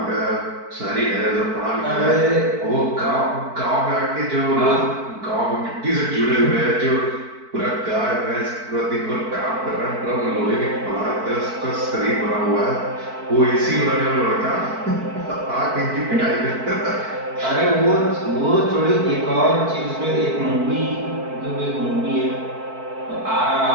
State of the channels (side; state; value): left; late; 4.5 ms